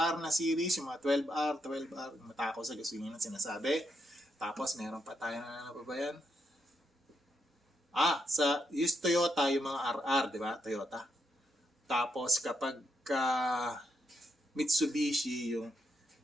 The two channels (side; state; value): both; normal; correlation 0.80